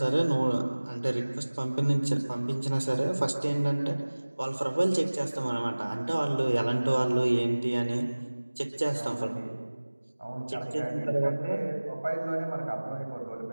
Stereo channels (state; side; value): inverted; both; correlation -1.00